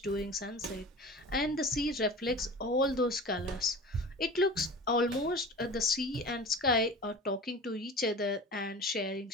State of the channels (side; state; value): both; normal; correlation 0.36